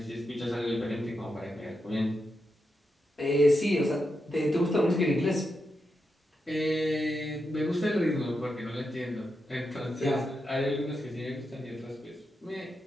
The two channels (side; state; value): both; normal; correlation 0.86